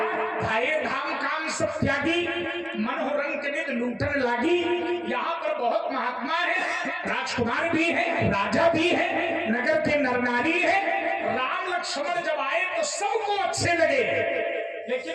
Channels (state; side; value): identical; both; correlation 1.00